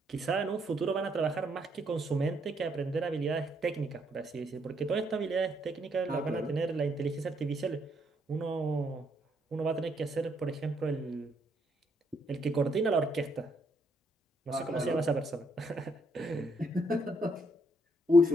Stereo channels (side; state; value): both; normal; correlation 0.73